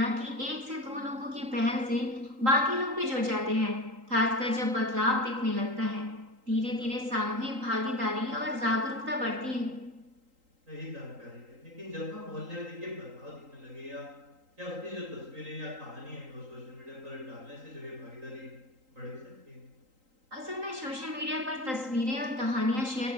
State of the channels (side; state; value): left; late; 3.8 ms